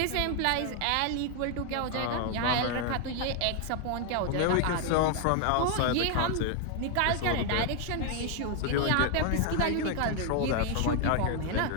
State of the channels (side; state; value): both; different; correlation 0.00